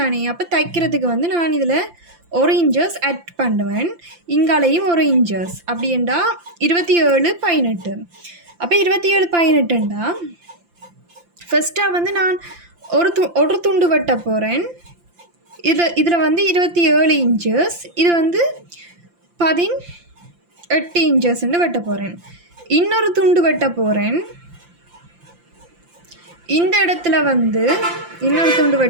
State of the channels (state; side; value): late; left; 5.8 ms